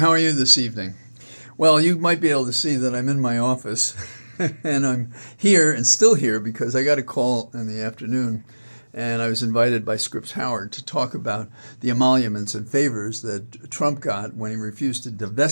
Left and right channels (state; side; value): inverted; both; correlation -1.00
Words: are you this evening? Well, you might be able to see that I'm in my office and I'm here and still here because I got a call in the afternoon and I was invited by Scripps Howard to talk about the emoluments and favors that Trump got when he refused to